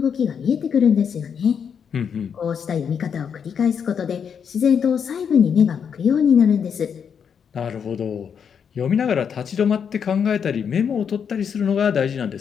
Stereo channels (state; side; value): quieter; right; 7.2 dB